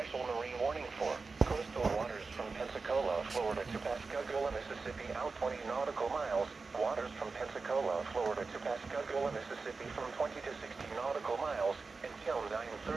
marine warning for coastal waters from Pensacola, Florida to Pascagoula, Mississippi out 20 nautical miles, waters from Pensacola, Florida to Pascagoula, Mississippi from 20 to 60 nautical miles until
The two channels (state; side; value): quieter; left; 4.2 dB